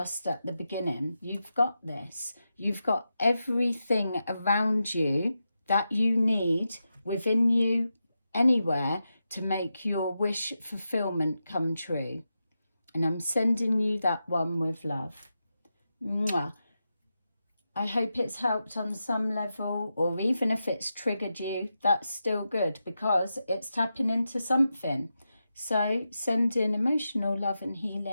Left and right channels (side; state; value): both; inverted; correlation -0.89